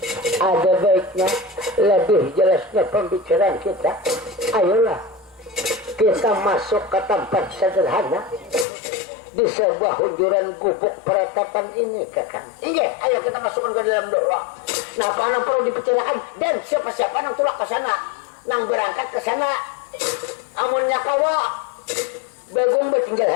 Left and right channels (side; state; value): right; drops out; at 8.7 s